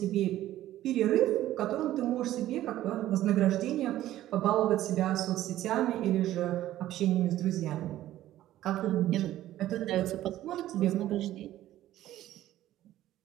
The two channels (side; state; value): left; quieter; 13.9 dB